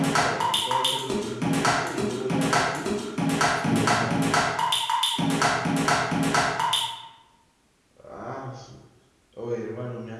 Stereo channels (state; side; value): identical; both; correlation 1.00